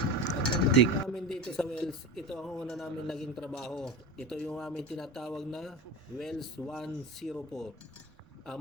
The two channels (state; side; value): normal; both; correlation 0.26